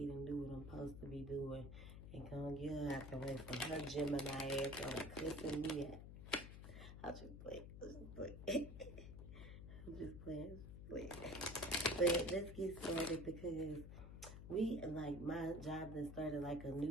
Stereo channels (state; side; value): noise; left; hum, 10 dB below the sound